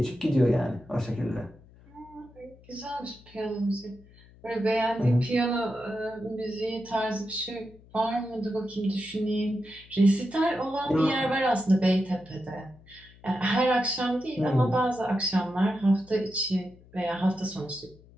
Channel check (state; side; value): noise; left; hum, 25 dB below the sound